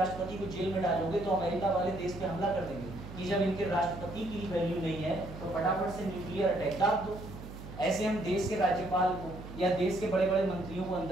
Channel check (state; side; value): noise; right; hum, 12 dB below the sound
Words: को जेल में डालोगे तो अमेरिका वाले देश पे हमला कर देंगे कि जब इनके राष्ट्रपति की वैल्यू नहीं है तो फटाफट से न्यूक्लियर अटैक दाब दो। ऐसे हम देश के राज्यपाल को या देश के बड़े बड़े मंत्रियों को